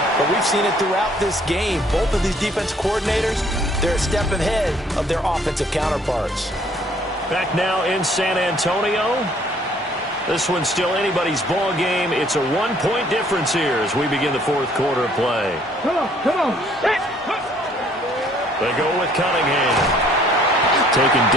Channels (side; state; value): both; normal; correlation 0.61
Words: but we've seen it throughout this game. Both of these defense coordinators, they're a step ahead of their offensive counterparts. Back now in San Antonio. This one's still anybody's ball game. It's a 1-point difference here as we begin the fourth quarter of play. Come on. They go with Cunningham. Taken